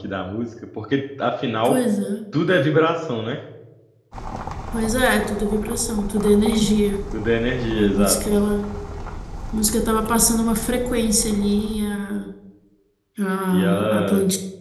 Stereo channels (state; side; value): identical; both; correlation 1.00